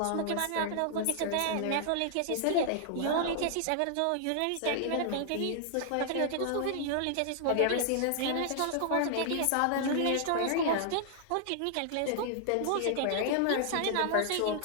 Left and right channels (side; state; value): both; different; correlation 0.00